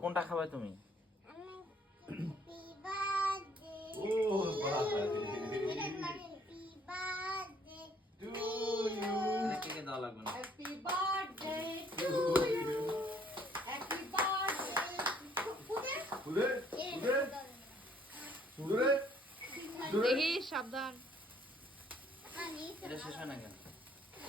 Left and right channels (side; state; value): both; normal; correlation 0.63